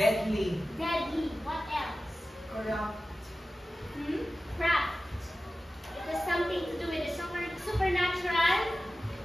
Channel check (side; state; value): both; normal; correlation 0.95